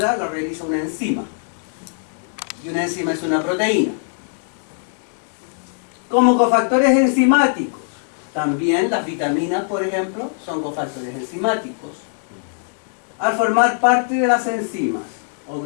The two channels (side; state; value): right; silent; digital silence